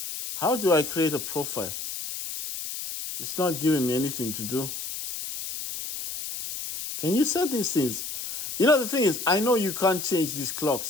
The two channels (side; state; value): left; noise; hiss, 7 dB below the sound